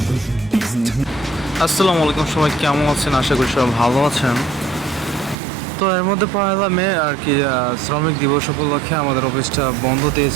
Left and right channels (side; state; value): left; drops out; at 5.4 s